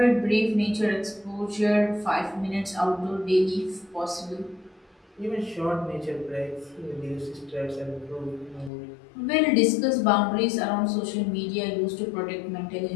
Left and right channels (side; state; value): right; drops out; at 8.7 s